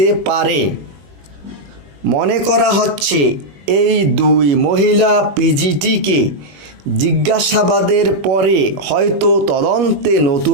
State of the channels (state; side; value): late; left; 21 ms